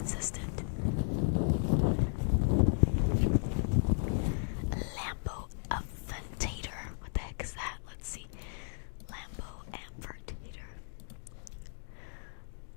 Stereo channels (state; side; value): silent; right; digital silence